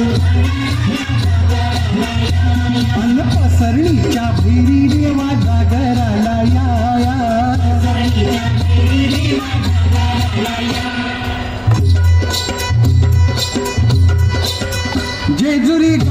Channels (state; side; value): identical; both; correlation 1.00